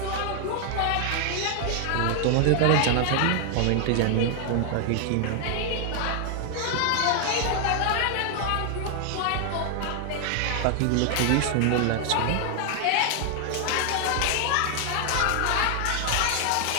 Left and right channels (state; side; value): different; both; correlation 0.00